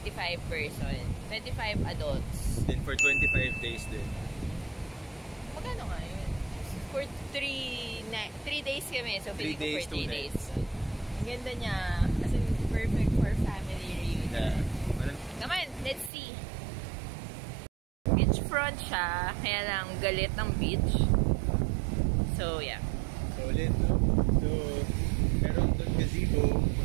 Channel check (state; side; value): drops out; left; at 16.1 s